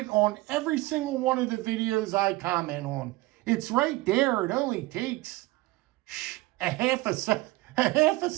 on every single one of the videos I comment on. It's right there. It only takes a half a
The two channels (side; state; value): left; quieter; 20.4 dB